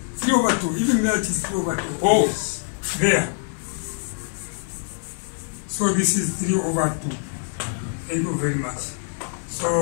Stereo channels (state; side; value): silent; right; digital silence